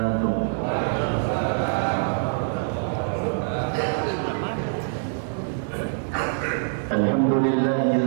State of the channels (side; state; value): left; silent; 62 dB below the other